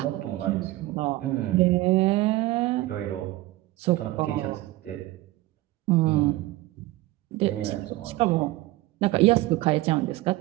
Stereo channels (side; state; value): left; quieter; 18.3 dB